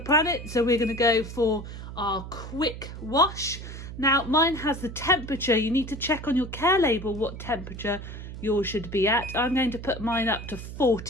so we're going to go for our quick wash. Now mine has the temperature. You need to check on your care label what temperature yours should be at. I'm going to put mine up to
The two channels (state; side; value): noise; right; hum, 10 dB below the sound